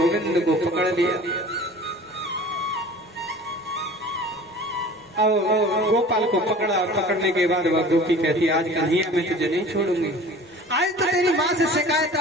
को पकड़ लिया। अब गोपाल को पकड़ा और पकड़ने के बाद वह गोपी कहती आज कन्हैया मैं तुझे नहीं छोड़ूंगी, आज तो तेरी माँ से शिकायत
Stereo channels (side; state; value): both; normal; correlation 0.43